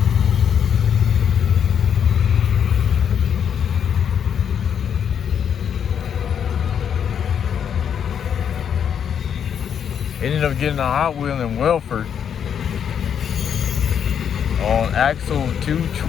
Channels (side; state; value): right; quieter; 8.2 dB